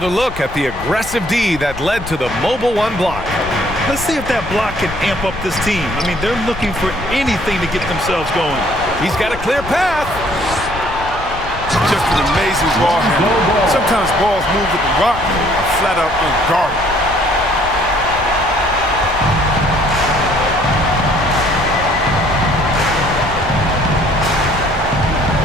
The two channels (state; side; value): noise; left; rumble, 12 dB below the sound